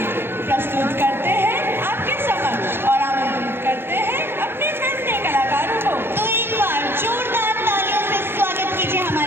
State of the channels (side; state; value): left; late; 0.11 ms